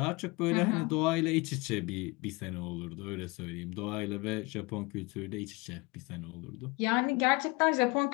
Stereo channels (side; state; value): right; quieter; 25.9 dB